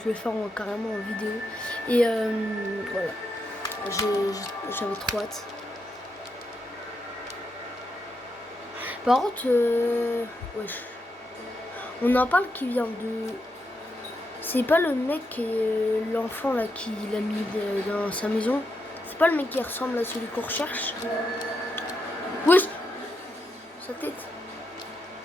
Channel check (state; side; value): normal; both; correlation 0.83